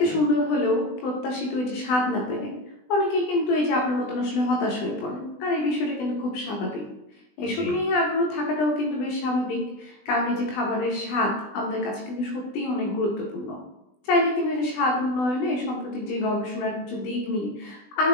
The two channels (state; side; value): late; right; 20 ms